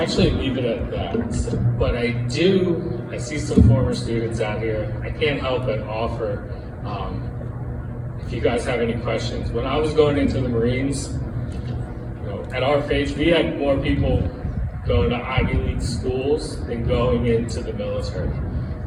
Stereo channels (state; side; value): identical; both; correlation 1.00